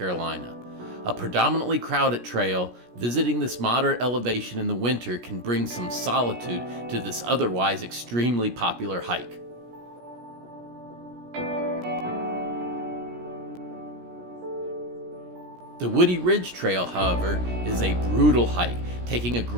A predominantly crowded trail, visiting this moderate elevation in the winter can bring some solitude to this otherwise extremely popular hike. The Woody Ridge Trail, however, is a brutal hike, taking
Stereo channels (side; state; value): left; late; 17 ms